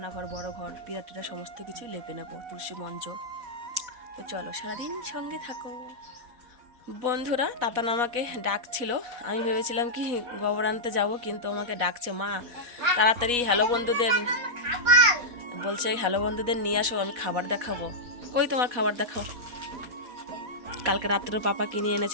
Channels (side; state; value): left; late; 4.1 ms